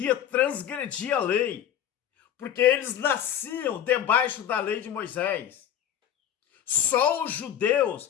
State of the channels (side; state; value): right; quieter; 10.1 dB